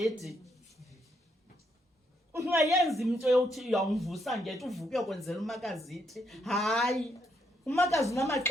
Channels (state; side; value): normal; both; correlation 0.76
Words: Ungayenza into yokuthi uyawumvusa ngethi uvuke uyokwenzela umakazi ithi. Hayi, umakazi